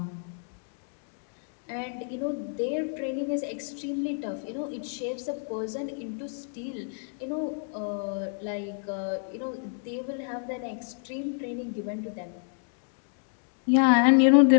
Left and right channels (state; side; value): silent; right; 58 dB below the other